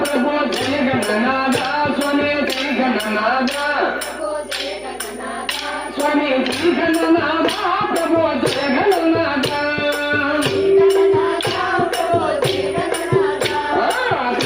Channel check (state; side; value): noise; left; hum, 26 dB below the sound